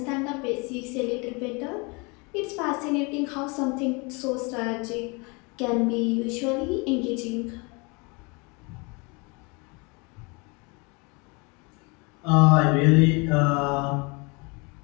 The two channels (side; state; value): right; quieter; 29.5 dB